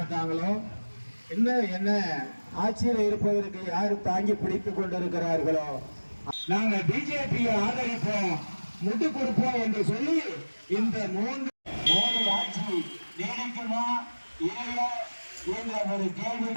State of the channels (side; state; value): both; inverted; correlation -1.00